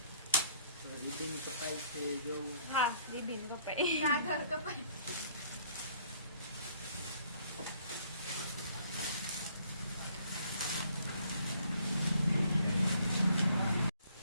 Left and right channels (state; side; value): inverted; both; correlation -0.62